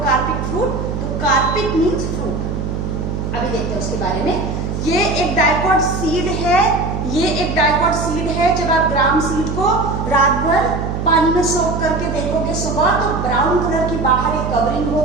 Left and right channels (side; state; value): right; noise; hum, 3 dB below the sound